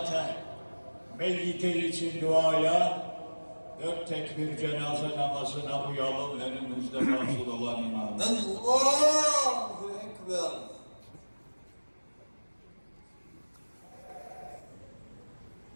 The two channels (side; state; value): both; inverted; correlation -1.00